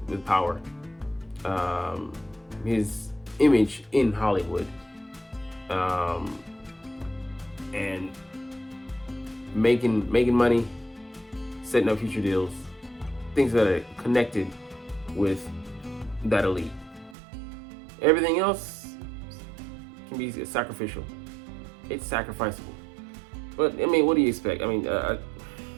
power, his image in Hollywood, and making money, setting up future deals, things that are connected with that elite. Everything else can be sacrificial. It's sacrificable. But I mean, what do you expect? I mean,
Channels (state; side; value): drops out; left; at 17.2 s